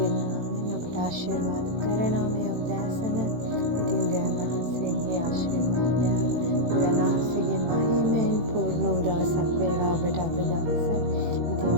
නාමයෙන් ඔබට ආශිර්වාද කරනවා මේ උදෑසන. ඉතින් දෙවියන් වහන්සේගේ ආශිර්වාදයන් දෙවියන් වහන්සේගේ මහිමෙන් පූර්ණ වූ දවසක් වේවා ඔබට අද දවස. ඉතින්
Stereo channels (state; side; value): late; left; 18 ms